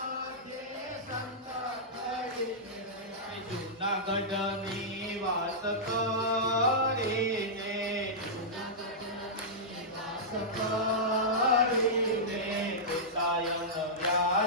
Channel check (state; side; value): normal; both; correlation -0.12